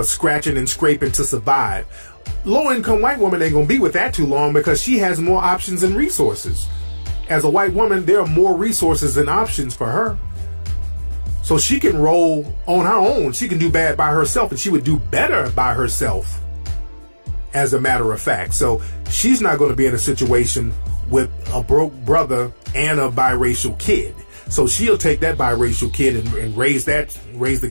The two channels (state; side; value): inverted; both; correlation -1.00